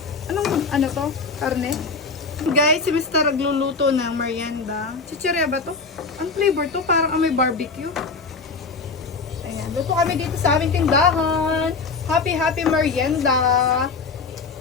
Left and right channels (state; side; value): quieter; right; 4.4 dB